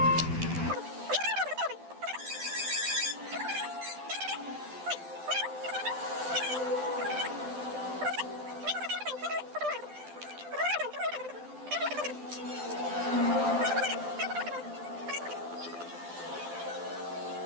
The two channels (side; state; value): left; late; 12 ms